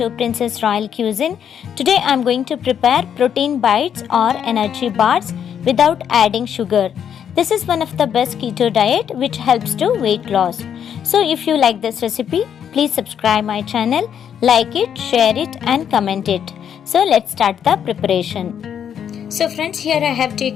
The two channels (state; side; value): quieter; right; 8.6 dB